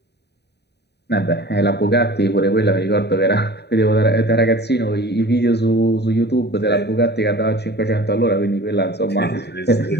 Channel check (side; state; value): right; late; 0.49 ms